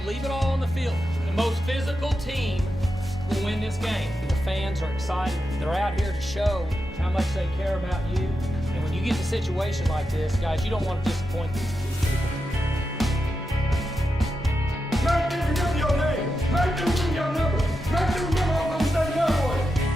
leave it all on the field. The most physical team will win this game. The fans are excited. They're out here to show how much they care about you. And when you get in a situation like this, guys, you don't want to disappoint these people. Make them remember your name. Make them remember your number. Make them remember Oklahoma State Cowboys.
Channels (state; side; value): normal; both; correlation 0.88